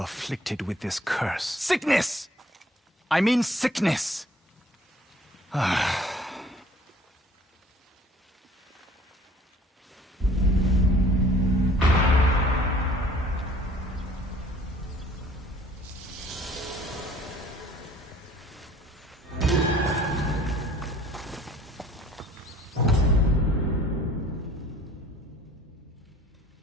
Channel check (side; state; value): both; normal; correlation 0.54